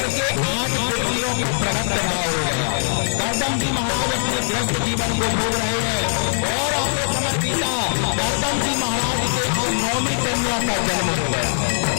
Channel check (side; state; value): right; silent; digital silence